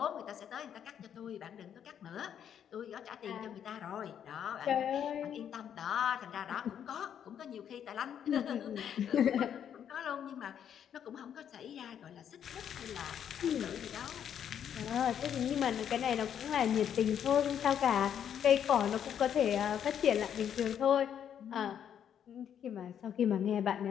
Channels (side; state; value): right; quieter; 9.0 dB